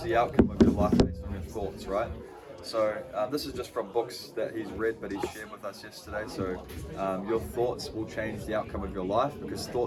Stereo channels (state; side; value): identical; both; correlation 1.00